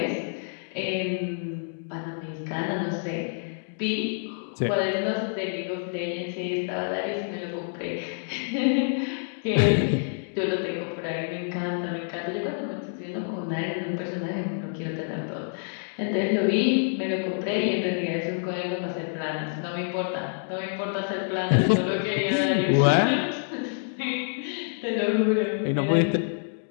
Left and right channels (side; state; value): right; silent; digital silence